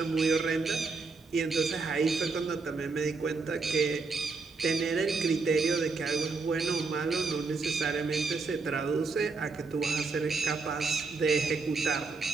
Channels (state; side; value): quieter; left; 4.2 dB